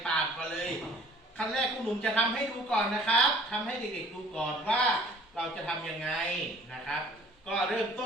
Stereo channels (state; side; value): normal; both; correlation 0.53